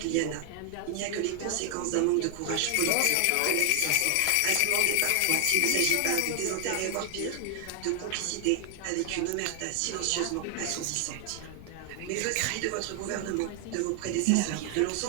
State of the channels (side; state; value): both; different; correlation 0.00